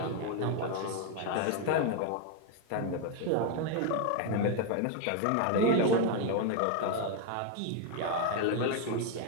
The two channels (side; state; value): both; different; correlation 0.01